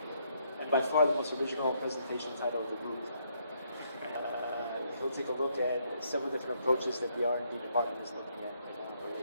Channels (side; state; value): both; inverted; correlation -0.72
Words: And by far the most original presentation title of the group. He'll take a look at several different approaches that the R&D department is looking at